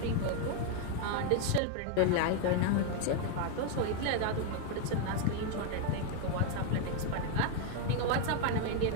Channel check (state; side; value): different; both; correlation 0.01